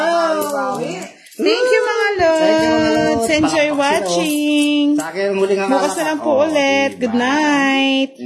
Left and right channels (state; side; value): identical; both; correlation 1.00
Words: Thank you, mga lods. Enjoy watching. Sa akin, muling ang Bukas na lang po ulit. Good night.